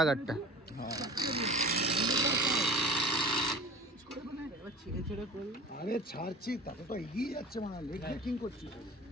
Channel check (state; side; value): normal; both; correlation 0.38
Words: गाड़ीटा আরে ছাড়ছি তাতে তো এগিয়ে যাচ্ছে মানে লেগ ব্রেকিং করছি